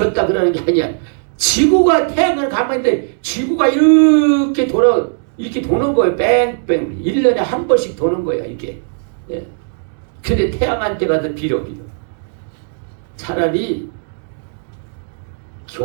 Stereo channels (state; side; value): silent; left; digital silence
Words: 그러는 게 아니야. 지구가 태양을 가만히 있는데 지구가 이렇게 도는 거예요. 뺑뺑. 1년에 한 번씩 도는 거예요. 이렇게. 예. 근데 태양한테 가서 빌어. 차라리